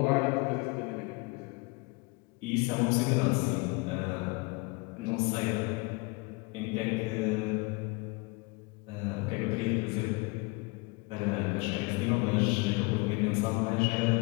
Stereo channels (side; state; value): right; quieter; 27.7 dB